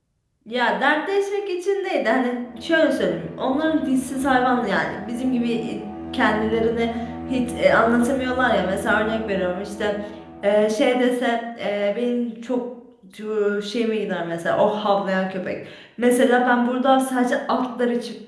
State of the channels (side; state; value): both; identical; correlation 1.00